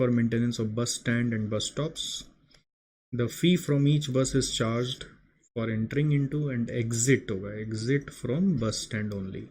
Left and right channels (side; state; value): both; identical; correlation 1.00